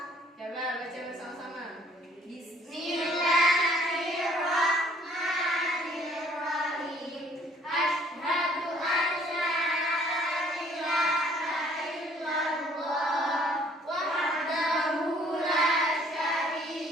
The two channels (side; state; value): both; normal; correlation 0.59